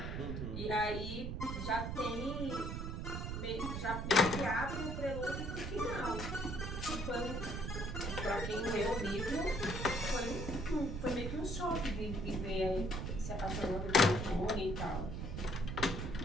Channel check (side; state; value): right; noise; rumble, 3 dB below the sound